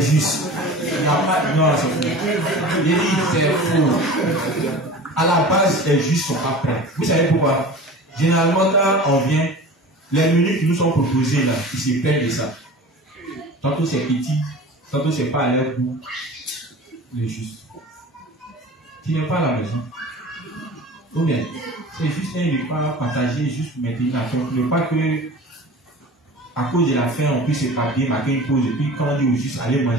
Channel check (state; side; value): normal; both; correlation 0.38